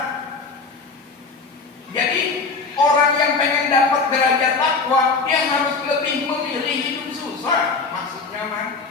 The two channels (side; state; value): right; quieter; 4.4 dB